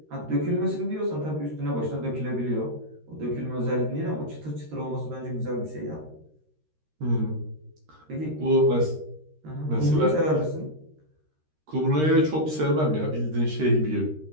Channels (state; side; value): late; left; 13 ms